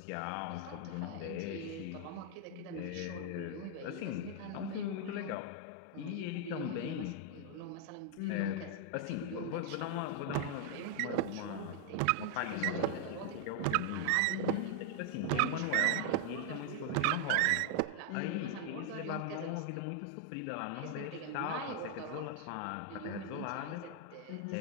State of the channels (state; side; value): different; both; correlation 0.00